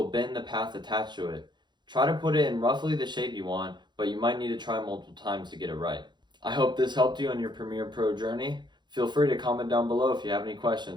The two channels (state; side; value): late; left; 0.21 ms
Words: bend the path attached to it. Try to put it in roughly the shape you want, but you might need to try multiple times to get it right. I hope this helped you on your Premiere Pro journey. Feel free to comment down below if you have any